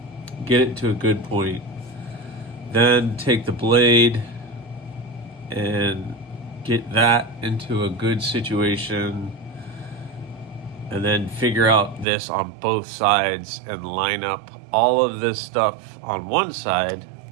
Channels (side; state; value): left; drops out; at 12.1 s